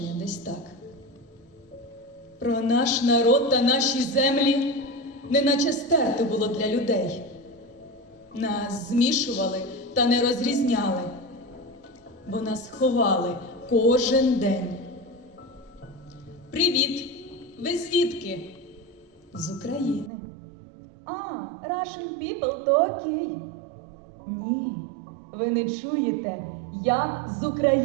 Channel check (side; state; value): left; drops out; at 20.1 s